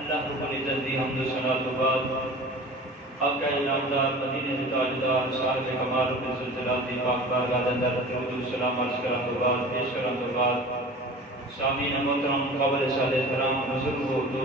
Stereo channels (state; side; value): normal; both; correlation 0.39